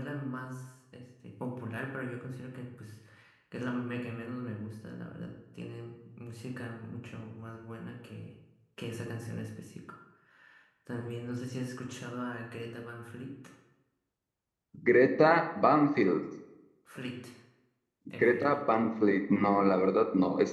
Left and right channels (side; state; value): both; identical; correlation 1.00